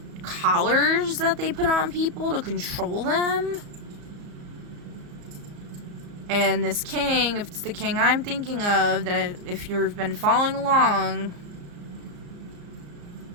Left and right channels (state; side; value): late; left; 34 ms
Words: collars that they put on people to control them. And this king, if it's the king I'm thinking of, that if you've been following along,